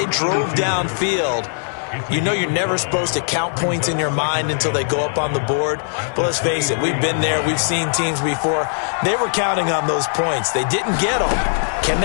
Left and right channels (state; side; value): silent; right; digital silence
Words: drove downfield, you know you're never supposed to count points in your mind until they go up on the board. But let's face it, we've been there. We've seen teams before. They were counting on those points. They didn't get them. Can